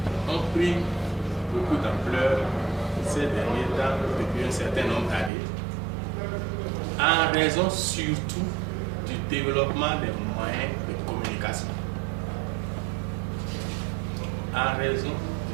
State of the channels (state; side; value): drops out; left; at 5.3 s